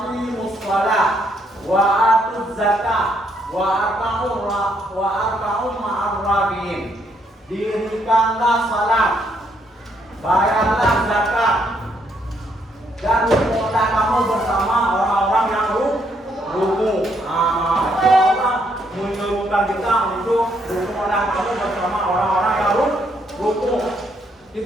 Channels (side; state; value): both; normal; correlation 0.72